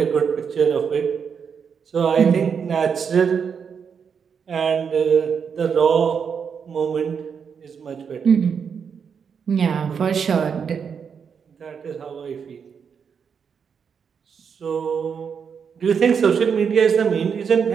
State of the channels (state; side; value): quieter; left; 6.7 dB